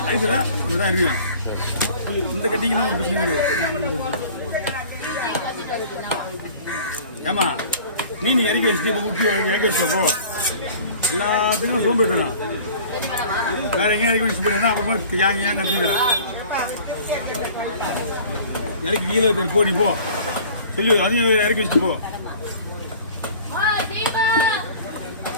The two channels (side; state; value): both; inverted; correlation -0.46